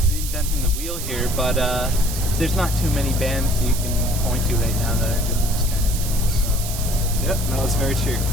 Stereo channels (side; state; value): right; noise; hiss, 7 dB below the sound